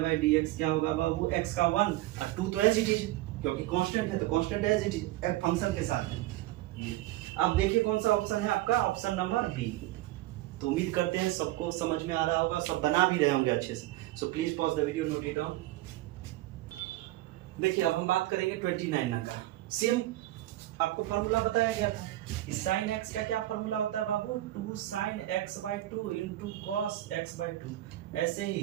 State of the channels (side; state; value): left; quieter; 16.4 dB